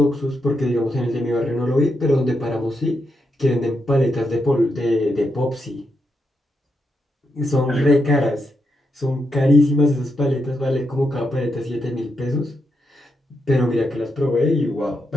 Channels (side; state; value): both; normal; correlation 0.83